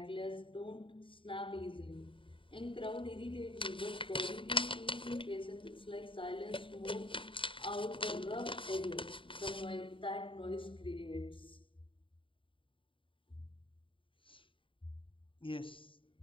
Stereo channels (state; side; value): late; right; 0.25 ms